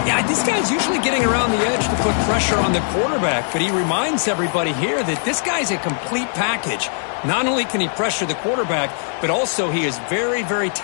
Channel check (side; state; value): right; silent; 66 dB below the other